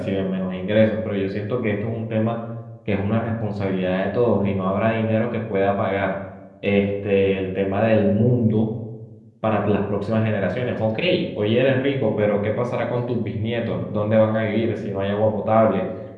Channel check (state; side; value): identical; both; correlation 1.00